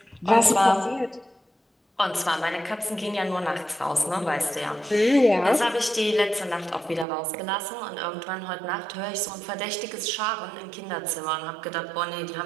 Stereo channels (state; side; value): drops out; left; at 7.1 s